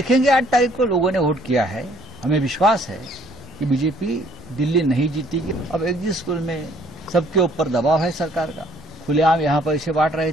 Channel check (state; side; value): normal; both; correlation 0.61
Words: 8 तारीख को लोगों ने वोट किया है। हमें विश्वास है कि बीजेपी दिल्ली नहीं जीतेगी। अब एक जिस पुल में सबके ऊपर दबाव है सरकार का। खुलेआम यहाँ पैसे बांट रहे